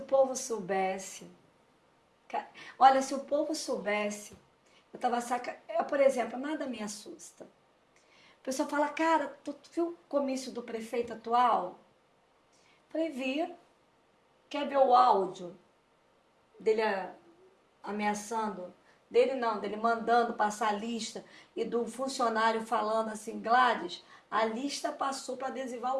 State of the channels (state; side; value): identical; both; correlation 1.00